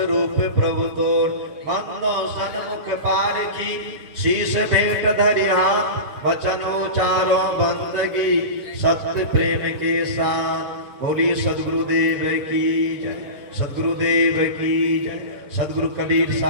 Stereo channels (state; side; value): late; left; 7.2 ms